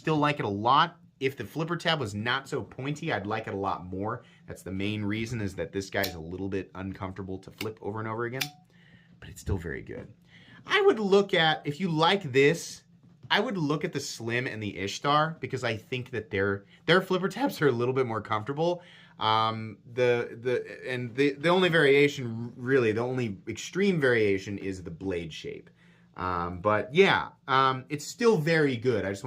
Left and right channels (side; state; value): both; identical; correlation 1.00